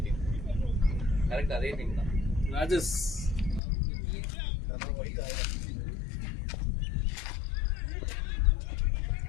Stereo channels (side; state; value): right; drops out; at 3.6 s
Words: டீம் கரெக்ட் அதே டீம் தான். ராஜஸ்